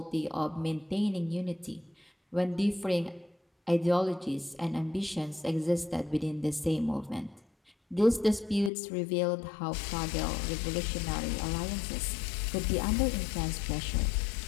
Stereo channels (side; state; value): right; drops out; at 8.7 s